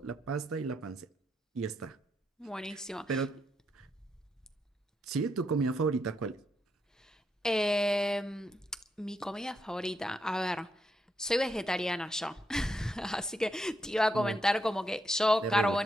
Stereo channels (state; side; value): normal; both; correlation 0.80